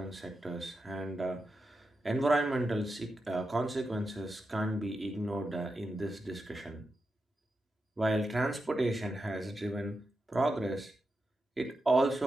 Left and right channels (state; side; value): normal; both; correlation 0.88